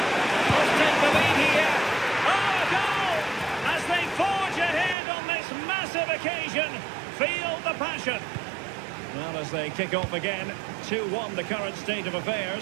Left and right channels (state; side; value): drops out; left; at 5.0 s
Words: Must take the lead here. Oh, a goal! As they forge ahead on this massive occasion. Feel the passion. Well, as they kick off again, 2-1 the current state of